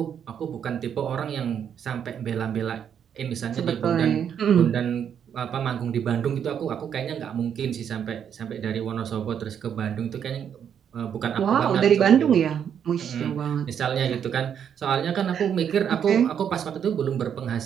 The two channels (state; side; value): quieter; left; 8.4 dB